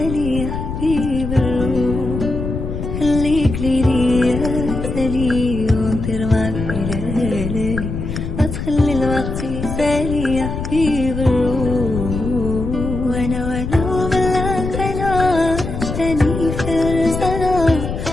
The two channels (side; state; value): left; noise; rumble, 5 dB below the sound